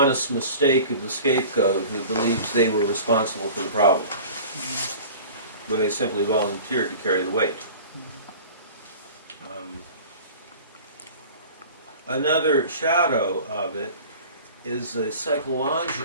mistake of the scapegoat who believes they were responsible for the problem, when they simply volunteered to carry the weight. Another shadow of it is a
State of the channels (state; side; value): inverted; both; correlation -0.40